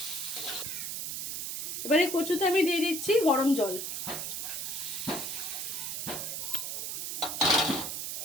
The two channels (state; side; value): noise; right; hiss, 3 dB below the sound